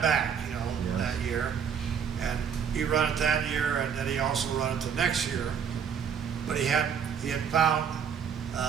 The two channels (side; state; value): left; quieter; 7.4 dB